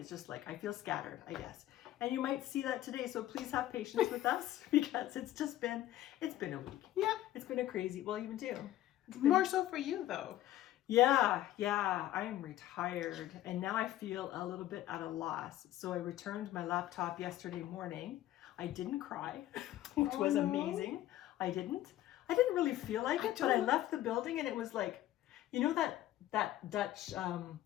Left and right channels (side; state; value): right; quieter; 13.9 dB